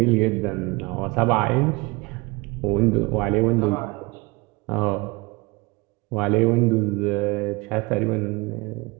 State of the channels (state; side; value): quieter; left; 25.2 dB